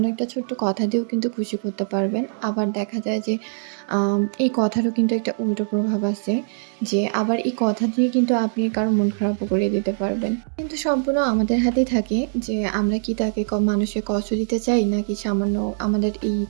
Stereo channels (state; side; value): silent; left; digital silence